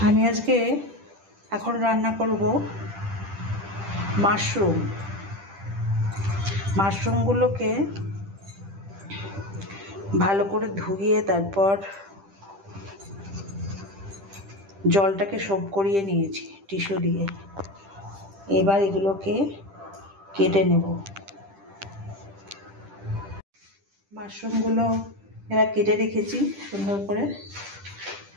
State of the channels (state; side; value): late; left; 10 ms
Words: আমি আজকে এখন রান্না করব মাশরুমগুলোকে ভালো করে ধুয়ে তারপর জলটাকে সোপ করিয়ে নিয়েছি টিস্যু দিয়ে। এবার এগুলোকে কেটে নেব। মাশরুমগুলো এবার কেটে রেখেছি সুন্দর করে।